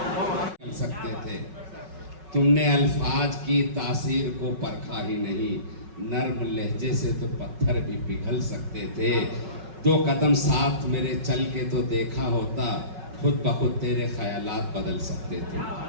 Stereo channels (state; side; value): late; left; 5.4 ms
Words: सकते थे, तुमने अल्फाज की तासीर को परखा ही नहीं, नर्म लहजे से तो पत्थर भी पिघल सकते थे। 2 कदम साथ मेरे चल के तो देखा होता, खुद ब खुद तेरे ख्यालात बदल सकते